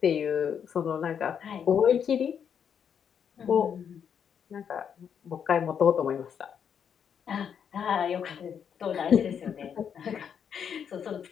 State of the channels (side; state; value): right; quieter; 7.8 dB